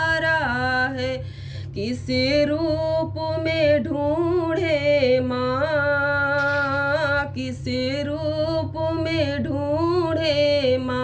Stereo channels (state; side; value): identical; both; correlation 1.00